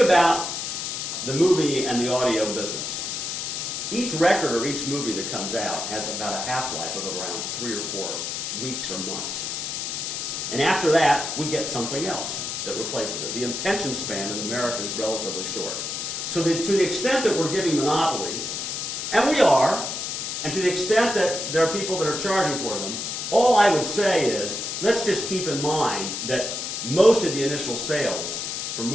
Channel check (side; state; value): left; noise; hiss, 4 dB below the sound